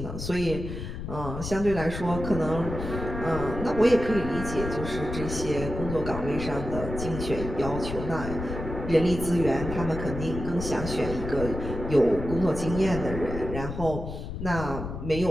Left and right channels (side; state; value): left; noise; rumble, 7 dB below the sound